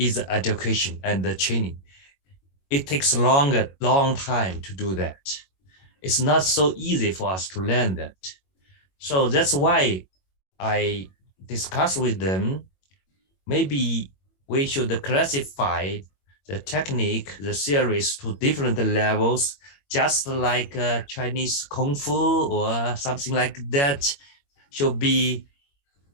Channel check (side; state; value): right; late; 21 ms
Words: the education and the training. It takes a long time to do that. It's not so easy for us to learn that. So that's why I discussed with them, maybe we should classify the technique, the series to different levels, just like Chinese Kung Fu or something like that. Should be